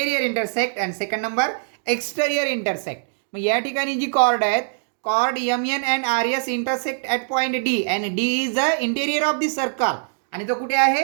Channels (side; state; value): left; silent; digital silence